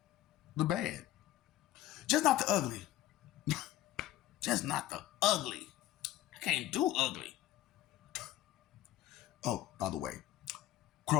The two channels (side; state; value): right; quieter; 13.6 dB